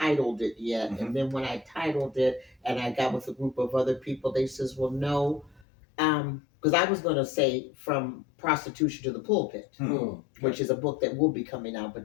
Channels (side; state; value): right; drops out; at 5.7 s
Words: it yet. And then when I titled it and I got with a group of other people, they says, well, no, because I was going to say From Prostitution to the Pulpit, which is a book that will be coming out,